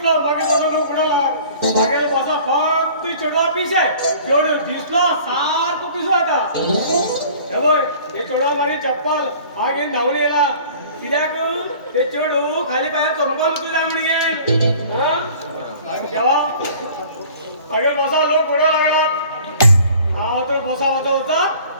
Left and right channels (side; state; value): both; inverted; correlation -0.48